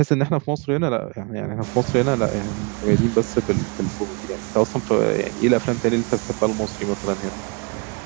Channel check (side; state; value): left; quieter; 31.9 dB